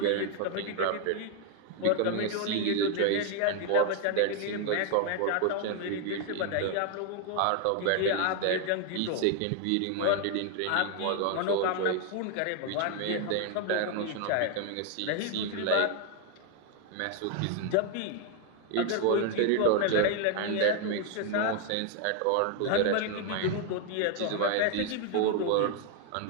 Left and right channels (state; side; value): different; both; correlation 0.00